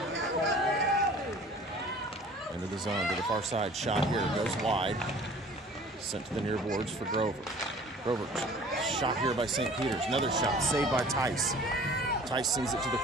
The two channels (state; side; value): normal; both; correlation 0.48